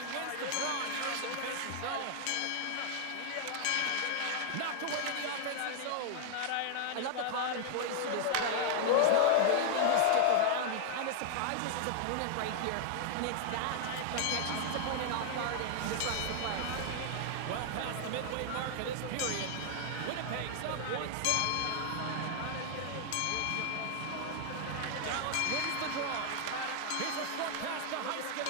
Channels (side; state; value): both; different; correlation 0.00